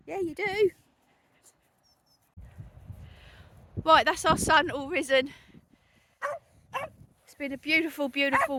Yeah, you do. Right, that's our sun all risen. It's been a beautiful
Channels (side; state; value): both; identical; correlation 1.00